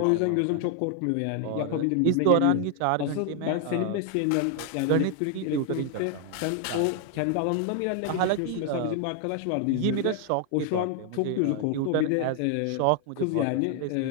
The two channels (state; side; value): different; both; correlation 0.00